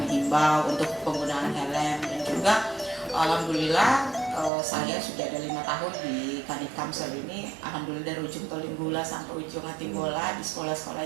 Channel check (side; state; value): left; drops out; at 4.5 s